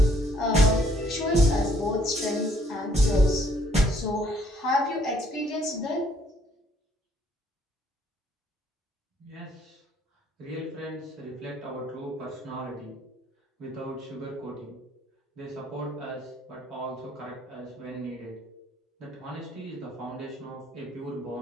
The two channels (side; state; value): both; normal; correlation 0.65